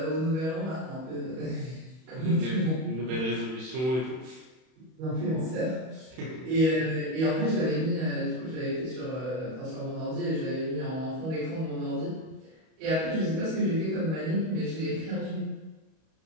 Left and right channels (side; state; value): left; late; 31 ms